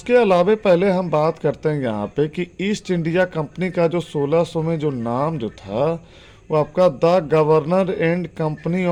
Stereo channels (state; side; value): identical; both; correlation 1.00